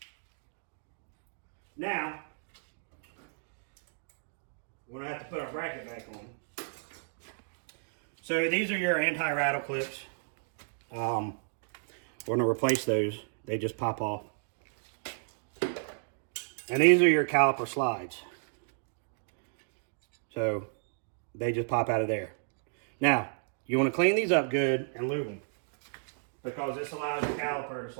Now, we're going to have to put our bracket back on. So these are your anti-rattle clips. We're going to replace those. They just pop off. And these are your caliper slides. So they just pop out of there. Now, you want to clean these up good and lube them, because this allows the caliper to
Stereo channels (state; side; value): silent; left; digital silence